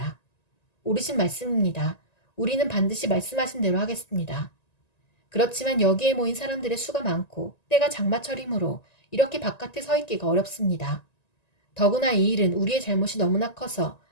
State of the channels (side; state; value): right; late; 1.9 ms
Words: 옳으신 말씀입니다. 우리는 반드시 말씀하신 대로 하겠습니다. 그렇지만 여기에 모인 사람들의 수가 많고 때가 장마철이므로 이렇게 바깥에 서 있기가 어렵습니다. 더구나 이 일은 우리의 잘못이 너무나 커서